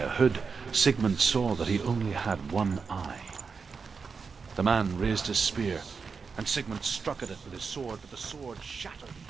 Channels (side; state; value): left; quieter; 5.2 dB